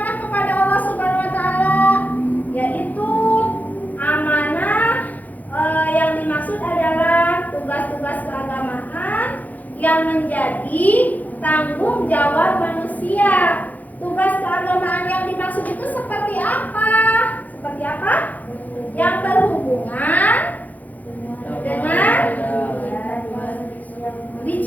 kepada Allah Subhanahu wa taala? Yaitu amanah yang dimaksud adalah tugas-tugas keagamaan yang menjadi tanggung jawab manusia. Tugas keagamaan yang dimaksud itu seperti apa? Seperti apa? Yang berhubungan dengan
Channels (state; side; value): late; right; 0.080 ms